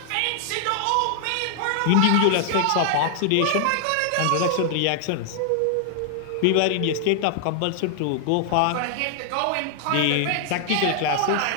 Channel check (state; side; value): different; both; correlation 0.00